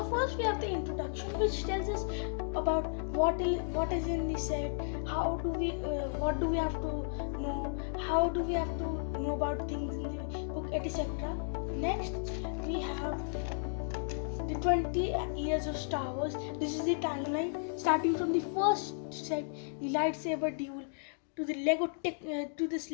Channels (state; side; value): silent; right; digital silence